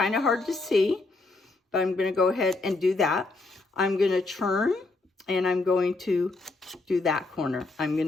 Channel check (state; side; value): quieter; right; 3.4 dB